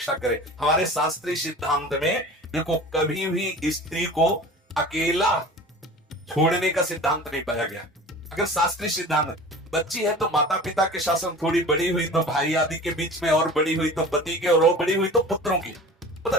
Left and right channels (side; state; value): both; normal; correlation 0.39